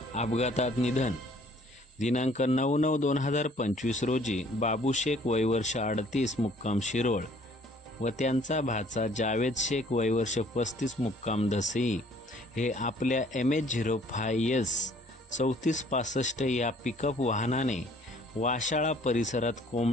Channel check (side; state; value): both; normal; correlation 0.58